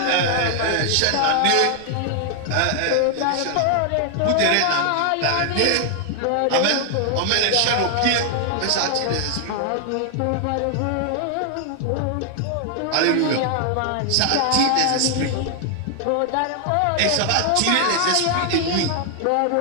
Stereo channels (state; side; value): different; both; correlation 0.00